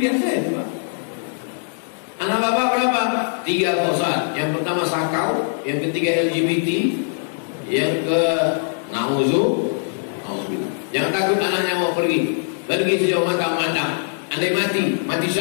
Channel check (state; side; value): silent; right; digital silence